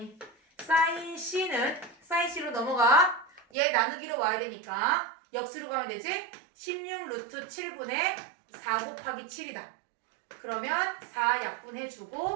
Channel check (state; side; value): drops out; left; at 3.5 s